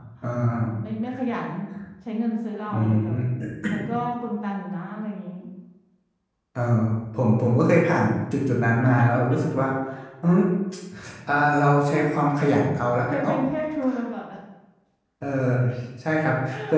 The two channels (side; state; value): both; identical; correlation 1.00